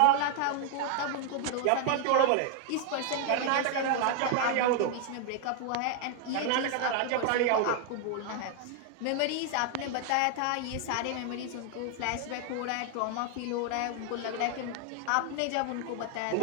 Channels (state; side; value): different; both; correlation 0.00